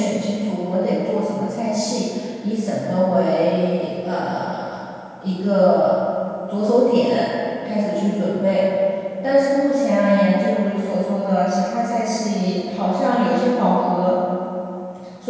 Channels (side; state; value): both; identical; correlation 1.00